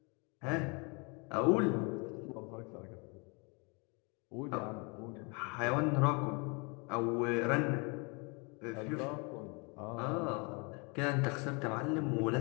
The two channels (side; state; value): right; quieter; 31.7 dB